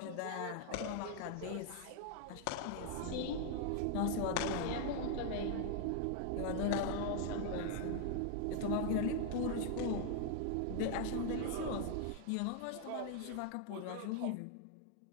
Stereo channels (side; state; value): both; different; correlation 0.00